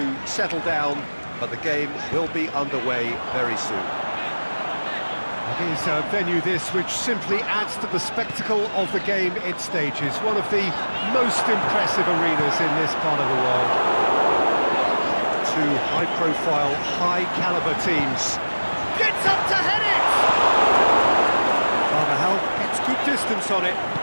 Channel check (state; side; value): inverted; both; correlation -1.00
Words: settle down, but the game will be underway very soon. It is a venue this which simply adds to the spectacle of the game it stages. One of the most impressive arenas in this part of the world. Two high-profile, high-caliber teams. Gets up to head it! Carvajal gets good distance on it.